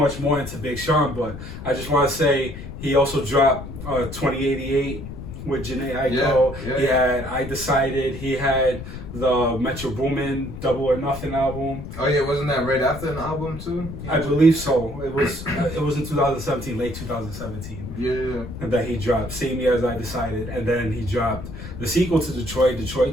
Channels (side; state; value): left; noise; rumble, 10 dB below the sound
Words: more into Big Sean, but I just want to say he also dropped 2088 with Jhené Aiko. He had I Decided. He had the Metro Boomin Double or Nothing album. Oh yeah, wasn't that right after an album too? I believe so. It was in 2017, late 2017. Yeah. And that he dropped same year as I Decided, and then he dropped the sequel to Detroit